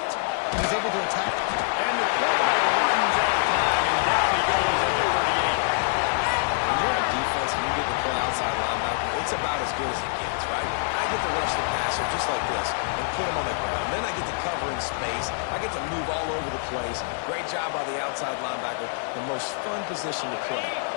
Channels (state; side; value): silent; right; digital silence